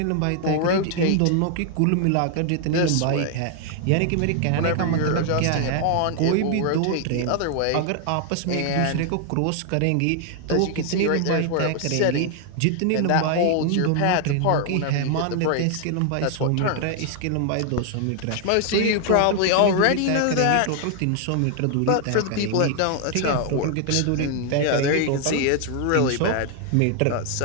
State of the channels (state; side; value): different; both; correlation 0.00